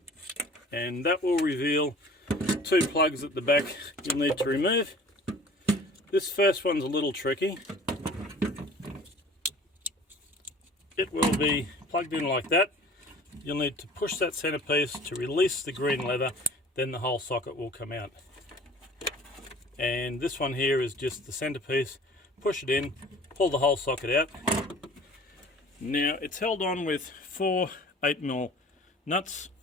and that will reveal two plugs at the back you'll need to remove. This first one's a little tricky. It will be plugged in like that. You'll need to push that centerpiece to release the green leather, then the whole socket will come out. And this one here is just the centerpiece. Push it in, pull the whole socket out. Now it's held on with 4 8mm nuts.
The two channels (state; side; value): normal; both; correlation 0.47